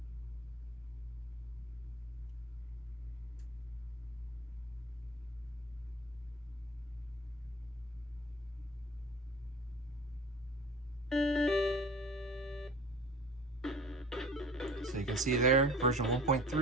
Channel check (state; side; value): normal; both; correlation 0.42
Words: So you can see there, version